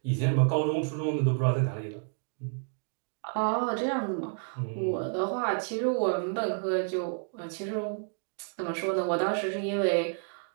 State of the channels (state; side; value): silent; left; 58 dB below the other